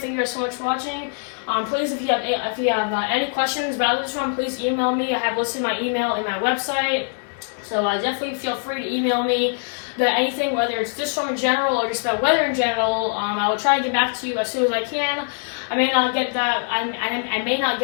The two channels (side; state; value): right; silent; 64 dB below the other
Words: Thank you guys so much for watching. Please, if you have any questions about this one, please email me. I have listed my email in my website, so definitely feel free to email me about anything, whether it's this storm in general or just about weather in general. I will try to get back to you as soon as I can. I may not get that. I may not